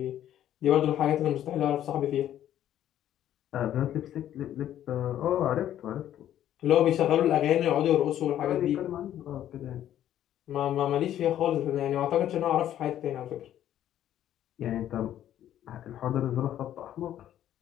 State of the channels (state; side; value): quieter; right; 11.5 dB